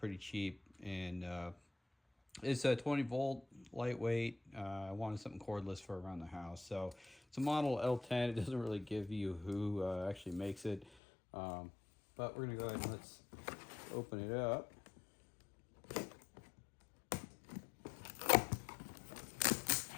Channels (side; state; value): right; drops out; at 10.9 s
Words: cheap, and it's a 20 volt, lightweight. I wanted something cordless for around the house, so it's a model L10. It doesn't really give you who actually makes it, but we're going to go ahead and let's open it up.